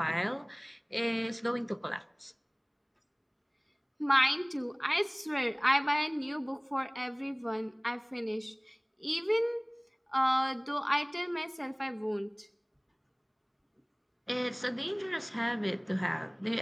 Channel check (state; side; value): identical; both; correlation 1.00